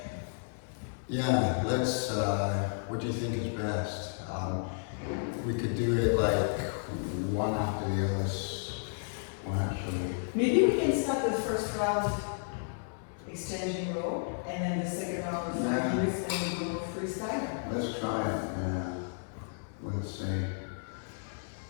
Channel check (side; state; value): right; silent; 56 dB below the other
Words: yeah, let's, what do you think is best? We could do it like one after the other, well actually, maybe we can start the first round exchanging role, and then the second round of 5 Yeah. minutes, and we go freestyle. let's try it, yeah. Let's see.